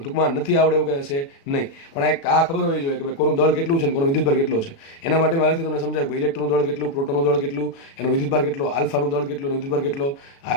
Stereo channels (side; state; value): right; late; 36 ms